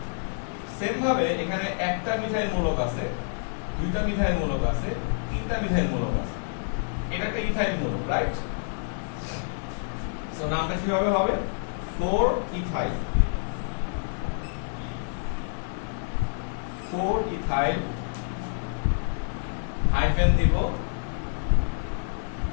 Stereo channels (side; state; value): right; silent; digital silence